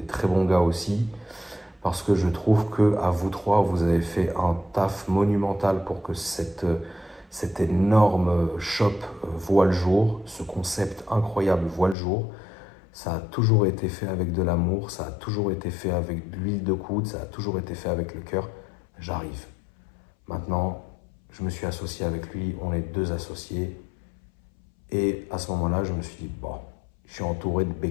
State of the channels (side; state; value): right; drops out; at 12.0 s